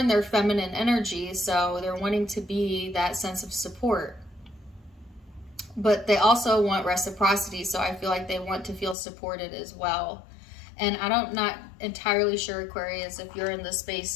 their feminine energy, so they're wanting to be that sense of support. But they also want reciprocity, so I feel like they want to feel supported as well. And I'm not entirely sure, Aquarius, if you're in the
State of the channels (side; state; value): right; drops out; at 9.0 s